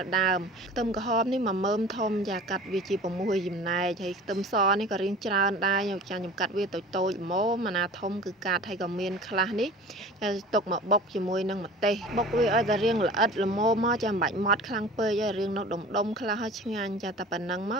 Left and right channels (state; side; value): normal; both; correlation 0.41